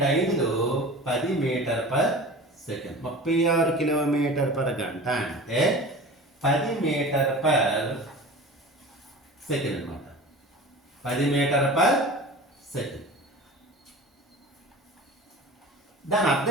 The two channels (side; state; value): both; normal; correlation 0.36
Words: 2 5 10 metre per second. 36 kilometre per గంట అంటే 10 మీటర్ పర్ సెకండ్ అనమాట. 10 మీటర్ పర్ సెకండ్. దాని